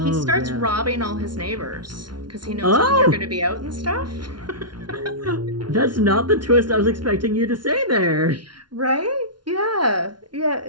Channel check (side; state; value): left; late; 0.71 ms